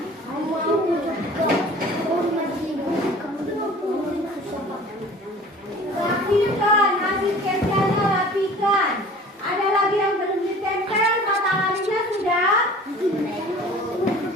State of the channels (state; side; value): normal; both; correlation 0.45